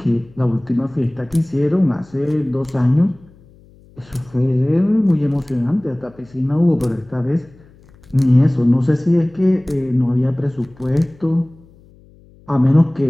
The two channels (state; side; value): noise; left; hum, 27 dB below the sound